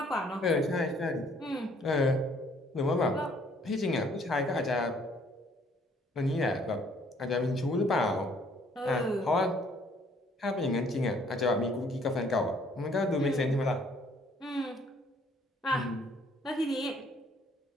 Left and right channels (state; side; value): normal; both; correlation 0.62